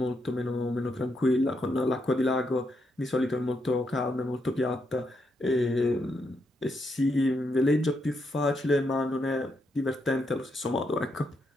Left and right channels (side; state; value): both; normal; correlation 0.80